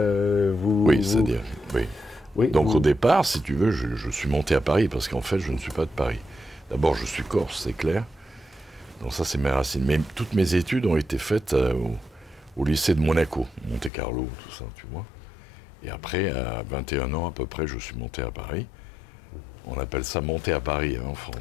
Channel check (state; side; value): drops out; right; at 13.9 s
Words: oui. Donc au départ, si tu veux, je suis monté à Paris parce qu'en fait, je ne suis pas de Paris. D'abord, je suis corse, c'est clair. Donc ça, c'est mes racines. Mais toutes mes études ont été faites au lycée de Monaco, Monte-Carlo, tout ça, tu vois. Et après, à 21 ans à peu près, je suis monté à Paris. On appelle ça monter à Paris en